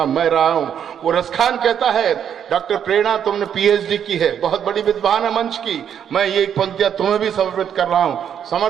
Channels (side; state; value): left; quieter; 8.7 dB